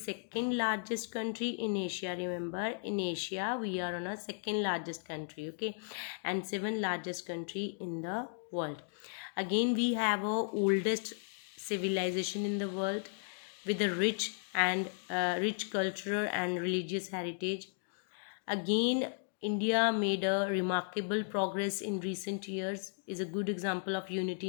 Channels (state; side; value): silent; right; digital silence